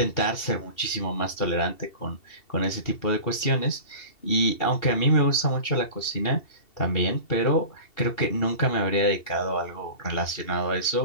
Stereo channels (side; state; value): right; late; 2.7 ms